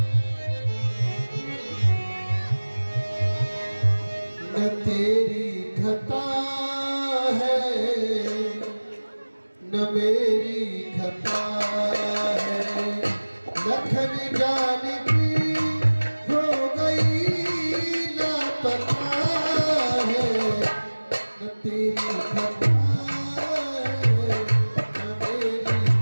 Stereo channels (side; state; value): both; inverted; correlation -1.00